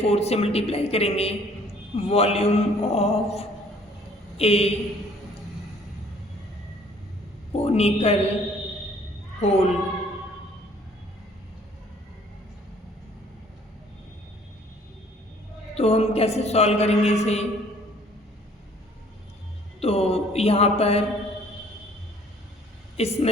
4 से मल्टीप्लाई करेंगे volume of a conical hole. तो हम कैसे सॉल्व करेंगे इसे, तो यहाँ पर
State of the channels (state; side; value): normal; both; correlation 0.57